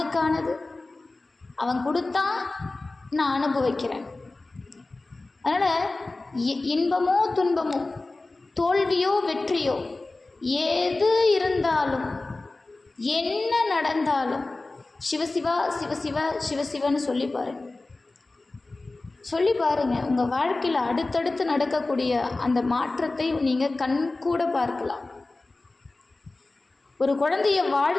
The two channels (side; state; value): right; quieter; 3.2 dB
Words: அவன் கொடுத்தான், நான் அனுபவிக்கிறேன். அதனால் இன்பமோ துன்பமோ, தோல்வியோ வெற்றியோ, எது இருந்தாலும் என்ன நடந்தாலும் சிவசிவா சிவசிவா சிவசிவன்னு சொல்லி பாருங்க. உங்கள் வாழ்க்கையில் அடுத்தடுத்து நடக்கக்கூடிய அந்த மாற்றத்தை நீங்கள் கண் கூட பார்க்கலாம். ஒரு குழந்தைய